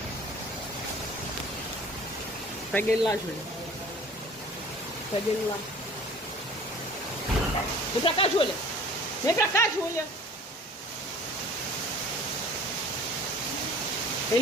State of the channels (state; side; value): normal; both; correlation 0.47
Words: Pega ele lá, Júlia. Pega ele lá. Vem pra cá, Júlia. Vem pra cá, Júlia. O